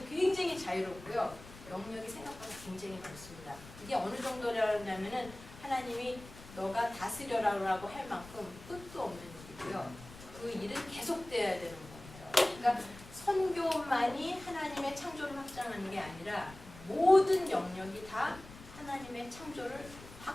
굉장히 자유롭고요. 영역이 생각보다 굉장히 넓습니다. 이게 어느 정도냐면은 하나님이 너가 다스려라고 할 만큼 끝도 없는 일이고요. 그 일은 계속돼야 되는 거예요. 그러니까 선교만이 하나님의 창조를 확장하는 게 아니라 모든 영역이 다 하나님의 창조를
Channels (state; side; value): noise; left; rumble, 17 dB below the sound